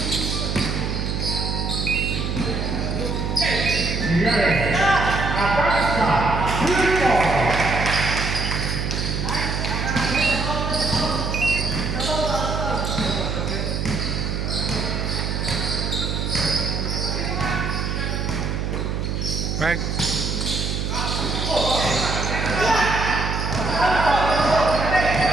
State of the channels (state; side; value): noise; right; hum, 2 dB below the sound